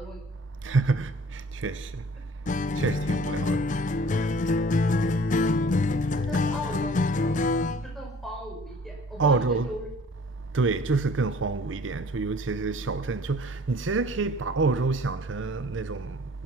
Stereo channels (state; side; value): normal; both; correlation 0.51